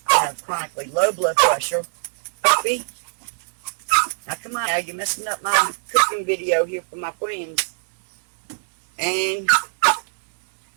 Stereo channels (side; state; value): left; silent; digital silence